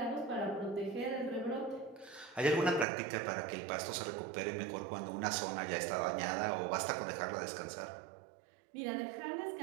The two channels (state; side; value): drops out; left; at 2.9 s